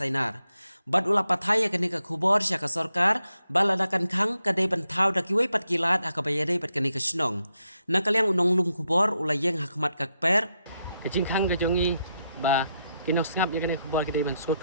bat ula pathai ya kene ka khubor sya ka sarkar baladakan khang kadai bantau dakiwai pat kilat akabayadai pat kene kasnong nakaliang unong lum khubor ula yeng hakmat ka per Kejing khang ke jongi ba kinok ngap ya kene khubor ke ban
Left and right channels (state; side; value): inverted; both; correlation -0.82